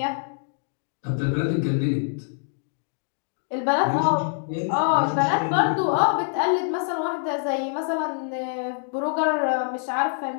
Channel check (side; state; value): right; silent; digital silence